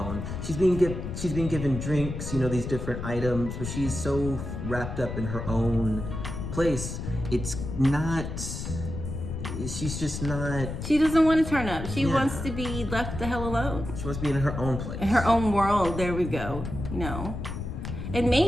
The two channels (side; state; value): left; noise; rumble, 6 dB below the sound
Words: She's being given drinks, you know, these different items, but she's so wrapped up in her own place. She's just not... She doesn't want to turn up. She wants to be left the hell alone. She wants to be in her own place. In her own world, there we go, you know. And